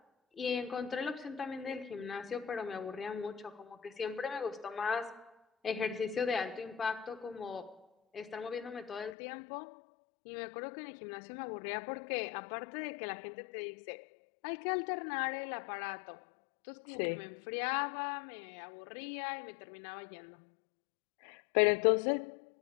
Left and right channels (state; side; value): drops out; right; at 9.2 s